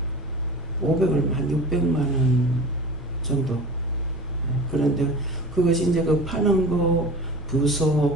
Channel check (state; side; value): normal; both; correlation 0.36